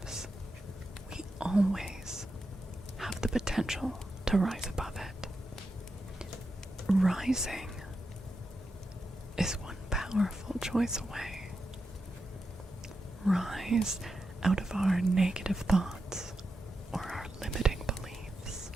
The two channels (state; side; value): normal; both; correlation 0.88